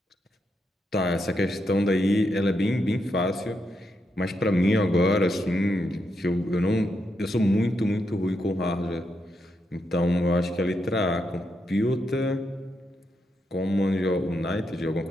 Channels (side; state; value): both; normal; correlation 0.82